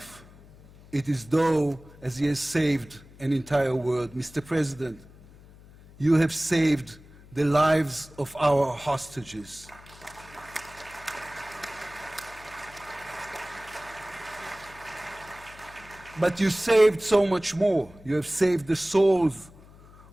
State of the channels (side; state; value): left; noise; hum, 22 dB below the sound